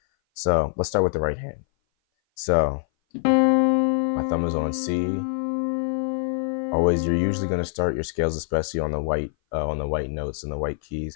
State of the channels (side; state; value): right; silent; 58 dB below the other